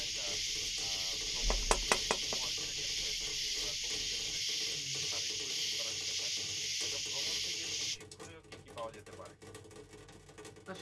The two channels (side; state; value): both; identical; correlation 1.00